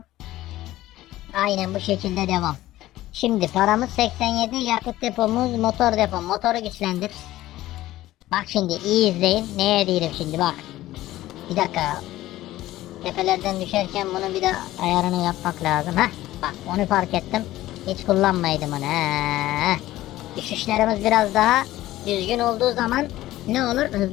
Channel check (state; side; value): quieter; right; 15.6 dB